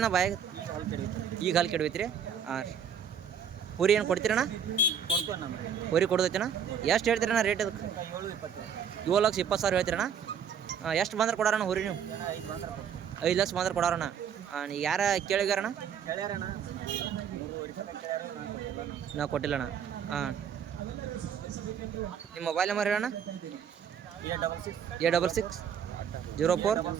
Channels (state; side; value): quieter; left; 7.6 dB